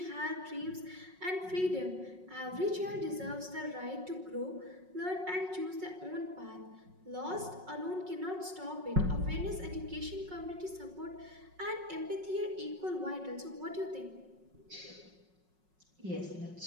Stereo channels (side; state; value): left; late; 5.4 ms